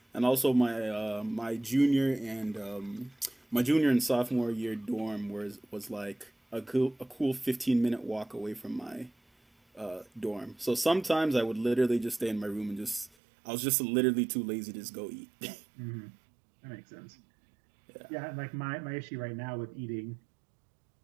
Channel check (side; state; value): left; drops out; at 13.1 s